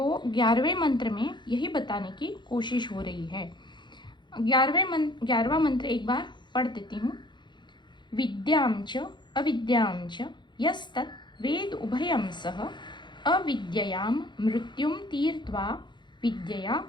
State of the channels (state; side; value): late; right; 0.22 ms